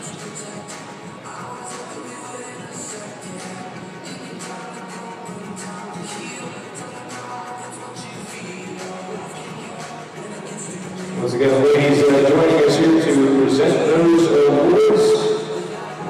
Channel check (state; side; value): identical; both; correlation 1.00